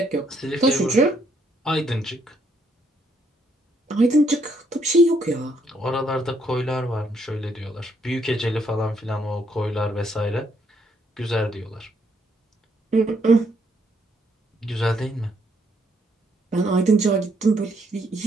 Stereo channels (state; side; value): normal; both; correlation 0.72